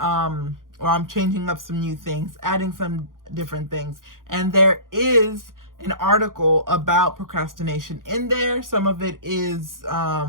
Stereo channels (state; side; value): late; left; 0.90 ms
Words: I'm changing up some new things, adding some different things, and there is an article about procrastination in there. Some of it is